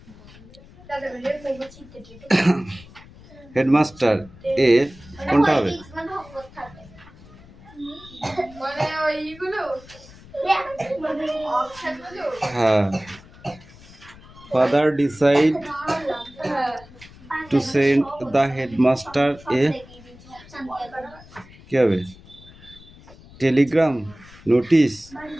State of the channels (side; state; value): left; noise; rumble, 21 dB below the sound